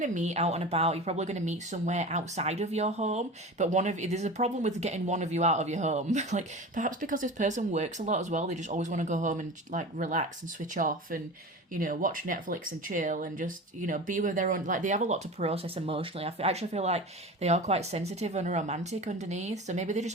to meet out and about. You're probably going to meet somewhere outside of your home. But there's a problem with getting one of you out of your home. Like perhaps because this person works a lot as well, they just always want to go home and like relax and switch off and watch Netflix and chill and just be with their own. Like they have a lot to process emotionally. Actually feel like they are quite sensitive and romantic underneath. So maybe they just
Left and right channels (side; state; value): both; normal; correlation 0.32